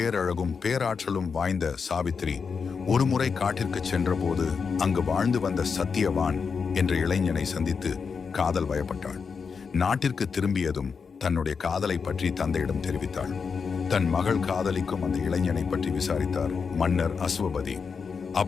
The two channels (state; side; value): quieter; right; 5.6 dB